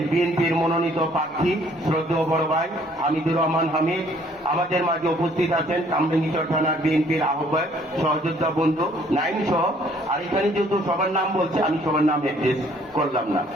বিএনপির মনোনীত প্রার্থী শ্রদ্ধেয় বড় ভাই হামিদুর রহমান হামিদ আমাদের মাঝে উপস্থিত আছেন। কামরাঙ্গীরচর থানার বিএনপির আহ্বায়ক সহযোদ্ধা বন্ধু নাইম সহ। আর এখানে যেহেতু সবার নাম বলছে, আমি সবার নাম অ্যাড্রেস করলাম না।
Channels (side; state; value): both; normal; correlation 0.61